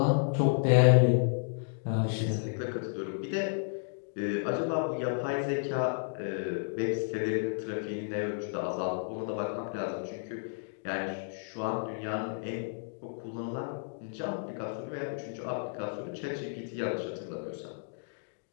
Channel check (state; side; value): silent; right; digital silence